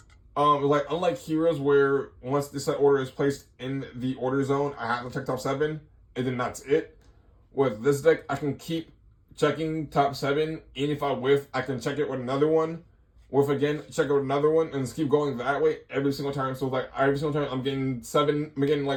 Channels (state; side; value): identical; both; correlation 1.00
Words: Like unlike Heroes, where once the set order is placed in the order zone, I have to check top 7, and then that's it. With this deck, I can keep checking top 7, and if I whiff, I can check it with another one. Whiff again, check it with another one, and just keep going that way every single time. So like every single time, I'm getting